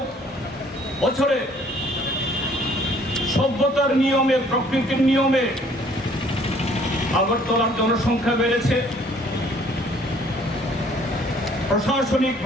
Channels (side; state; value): both; normal; correlation 0.59